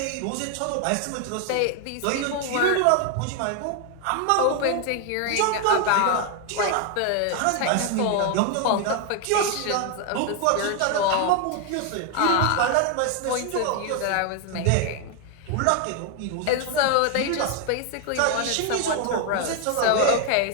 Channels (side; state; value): both; different; correlation 0.01